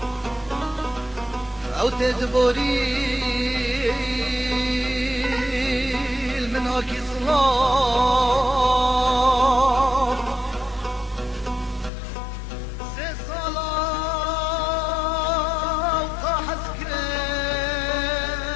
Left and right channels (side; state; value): right; drops out; at 11.9 s